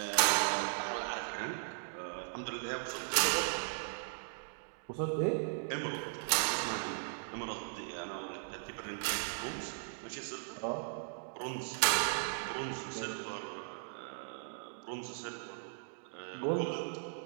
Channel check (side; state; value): left; silent; digital silence